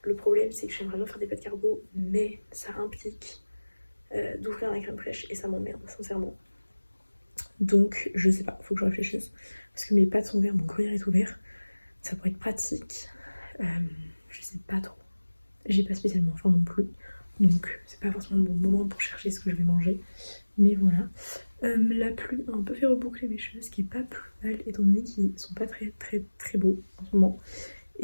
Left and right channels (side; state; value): both; inverted; correlation -1.00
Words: Le problème, c'est que j'aimerais bien faire des pâtes carbo, mais ça implique d'ouvrir la crème fraîche et ça m'emmerde, sincèrement. Donc, je sais pas, faut que je réfléchisse. Parce que mes pâtes sont ouvertes, mon gruyère est ouvert. Ça pourrait être pratique. Je sais pas trop. J'ai pas spécialement faim non plus. Donc, c'est pas forcément le bon moment pour chercher ce que je vais manger. Mais voilà. La pluie a un peu fait reboucler mes cheveux, ce qui est pas plus mal, étant donné qu'ils sont pas très beaux en ce moment.